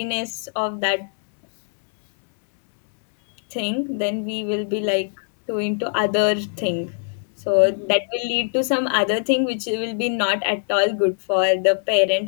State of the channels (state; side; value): silent; right; digital silence